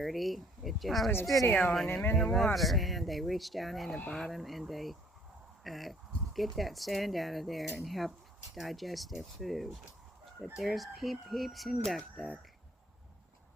It just I was has videoing sand in him it. in the They love water. sand. They reach down in the bottom and they get that sand out of there and help digest their food. But there's Peeps and Duck.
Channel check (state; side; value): normal; both; correlation 0.60